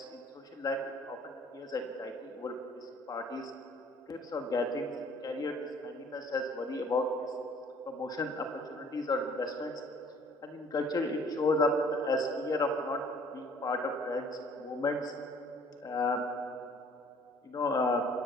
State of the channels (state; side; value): normal; both; correlation 0.55